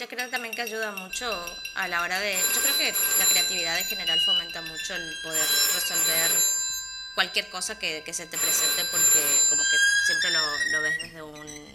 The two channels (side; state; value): both; identical; correlation 1.00